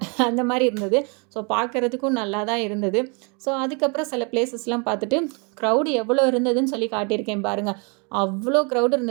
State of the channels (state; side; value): quieter; left; 33.9 dB